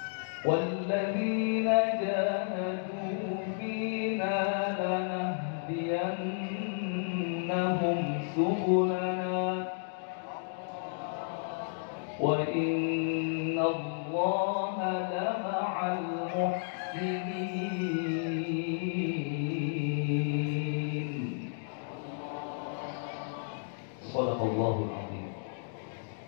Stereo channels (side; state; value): right; silent; digital silence